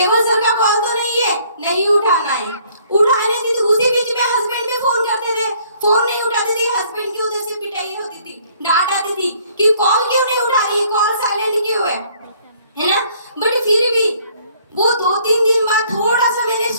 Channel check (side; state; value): both; inverted; correlation -0.61